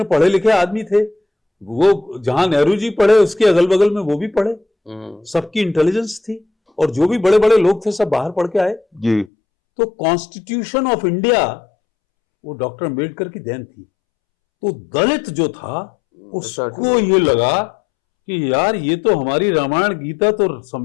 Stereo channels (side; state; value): right; drops out; at 9.3 s